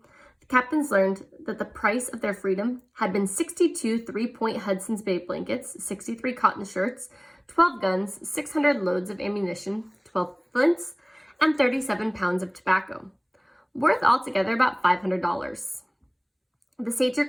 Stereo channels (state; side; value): identical; both; correlation 1.00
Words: the captains learned that the price of their freedom had been 62 three-point Hudson's Bay blankets, 63 cotton shirts, 12 guns, 600 loads of ammunition, 12 flints, and 37 pounds of tobacco, worth altogether about $500. The Sager